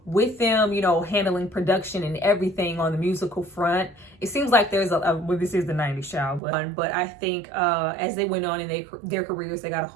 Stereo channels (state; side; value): drops out; left; at 6.4 s